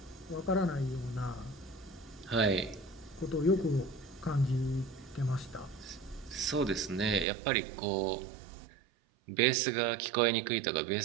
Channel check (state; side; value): drops out; left; at 7.2 s